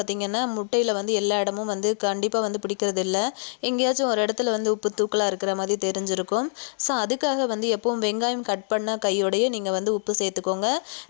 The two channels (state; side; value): silent; right; digital silence